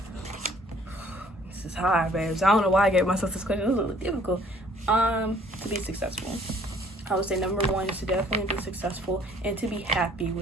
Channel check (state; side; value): normal; both; correlation 0.58